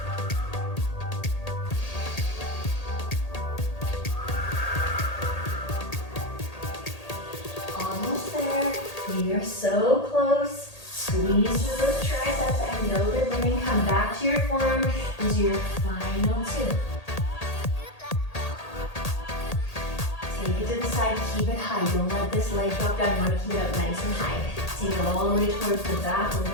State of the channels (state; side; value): late; right; 1.8 ms